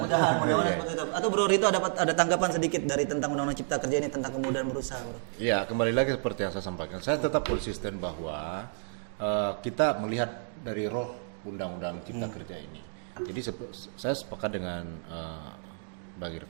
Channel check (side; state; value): left; silent; digital silence